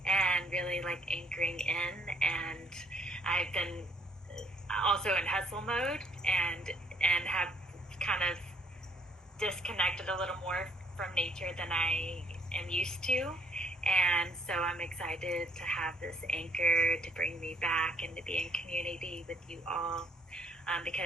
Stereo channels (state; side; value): normal; both; correlation 0.64